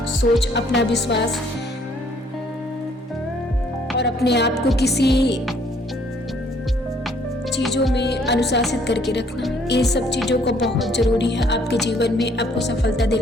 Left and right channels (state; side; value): normal; both; correlation 0.63